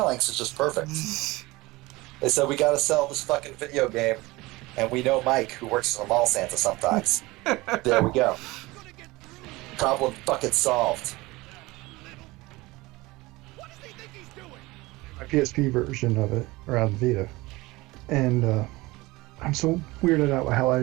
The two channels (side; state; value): left; quieter; 21.2 dB